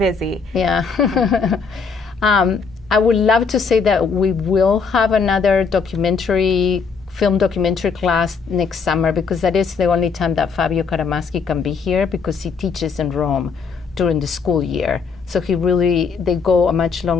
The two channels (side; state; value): right; quieter; 5.3 dB